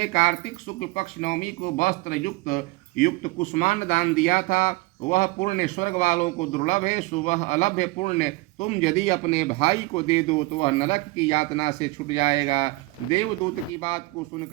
कार्तिक शुक्ल पक्ष नवमी को वस्त्र युक्त कुष्मांड दान दिया था, वह पुण्य स्वर्ग वालों को दुर्लभ है। सो वह अलभ्य पुण्य तुम यदि अपने भाई को दे दो तो वह नरक की यातना से छूट जाएगा। देवदूत की बात को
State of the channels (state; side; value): quieter; left; 22.2 dB